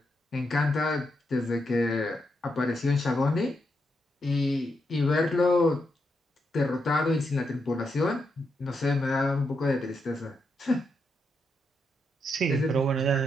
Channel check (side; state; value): both; normal; correlation 0.82